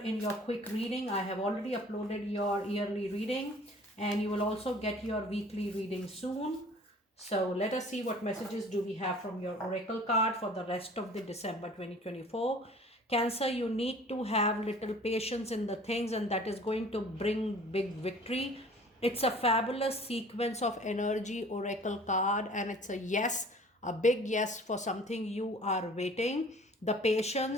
your quick reading. I have already uploaded your yearly reading and you will also get your weekly reading soon. So let us see what messages do we have from your oracle card for the rest of the December 2024. Cancer, you need to have little patience in the things, and that is going to bring big victory. It's a fabulous sequence of energy oracle card, and it's a yes, a big yes for something you are waiting. The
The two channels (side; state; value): both; normal; correlation 0.49